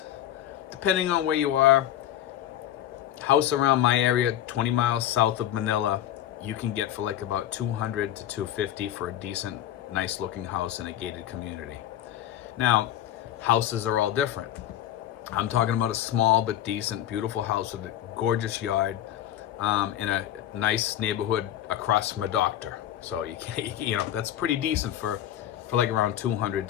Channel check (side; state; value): right; quieter; 12.0 dB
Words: depending on where you are, house around my area, 20 miles south of Manila, you can get for like about $200 to $250 for a decent, nice looking house in a gated community. Now, houses are all different. I'm talking about a small but decent, beautiful house with a gorgeous yard in a nice neighborhood across from a doctor. So you know that's pretty decent for like around $200